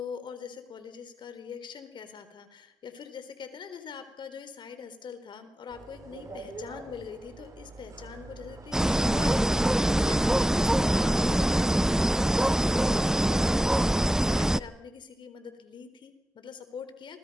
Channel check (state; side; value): normal; both; correlation 0.93